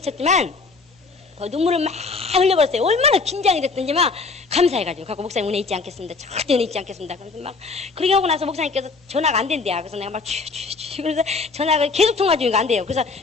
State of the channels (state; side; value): quieter; right; 4.3 dB